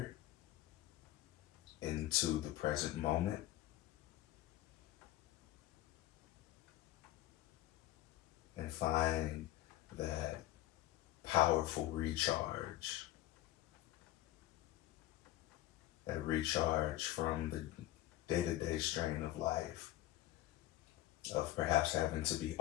into the present moment. And find that powerful recharge. That recharge from the day-to-day strain of life, of perhaps having to be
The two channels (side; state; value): right; quieter; 15.4 dB